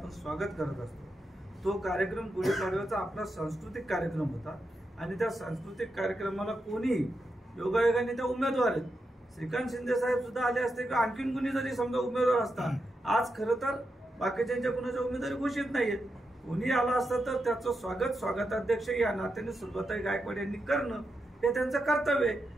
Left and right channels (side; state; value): both; normal; correlation 0.86